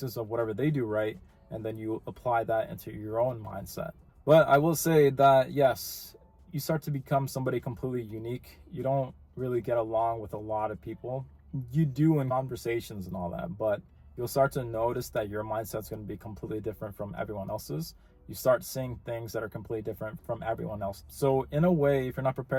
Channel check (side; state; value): both; identical; correlation 1.00